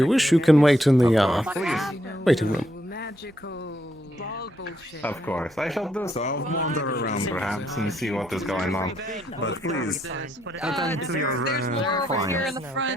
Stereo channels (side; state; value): both; normal; correlation 0.74